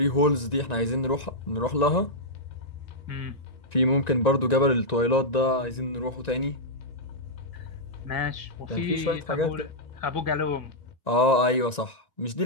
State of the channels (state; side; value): late; right; 1.9 ms